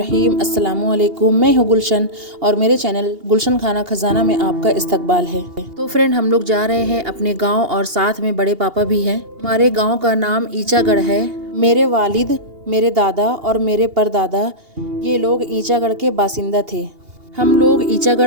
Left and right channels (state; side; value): late; left; 2.8 ms